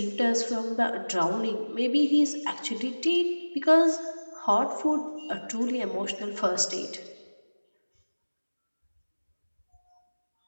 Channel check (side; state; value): both; inverted; correlation -1.00